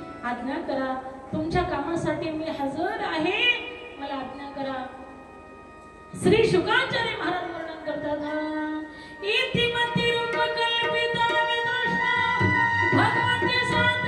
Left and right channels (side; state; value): both; identical; correlation 1.00